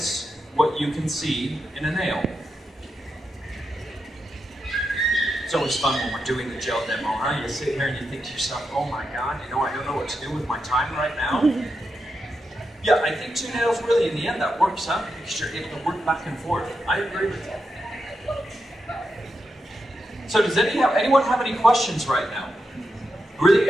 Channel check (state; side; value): normal; both; correlation 0.86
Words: what you can see in a nail. It's always fun when we're doing the gel demo, huh? You sit here and you think to yourself, oh my God, you know, I don't know what to do with my time right now. Yeah, I think 2 nails really, in the end, that works out because you're able to work back and forth. I agree with you. So does anyone have any questions right now?